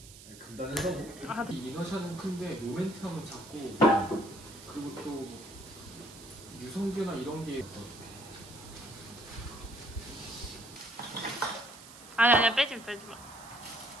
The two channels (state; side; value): noise; right; hiss, 17 dB below the sound